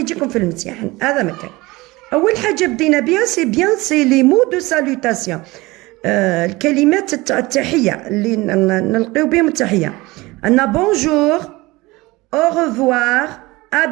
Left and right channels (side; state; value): left; quieter; 21.5 dB